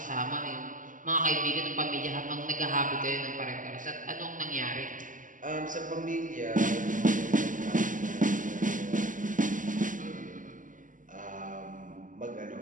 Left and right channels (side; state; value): left; late; 0.38 ms